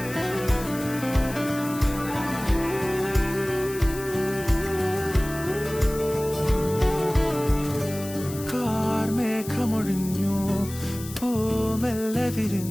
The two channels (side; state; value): left; noise; hiss, 13 dB below the sound